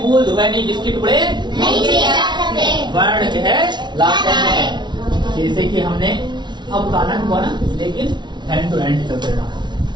ध्वनि जिसके टुकड़े वर्ण कहलाते हैं। जैसे कि हमने अब गाना हुआ ना, लेकिन हैंड टू हैंड चलते रहना।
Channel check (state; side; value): late; left; 0.21 ms